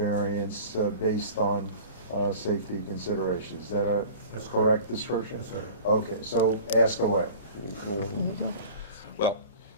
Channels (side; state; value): both; inverted; correlation -0.41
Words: based on safety considerations. Is that a correct description? Yes, sir. Okay, so ask away. Well,